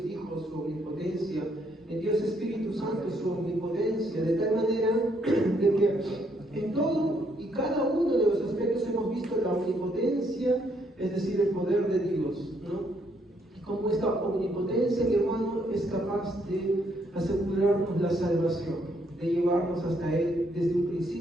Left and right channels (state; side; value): normal; both; correlation 0.72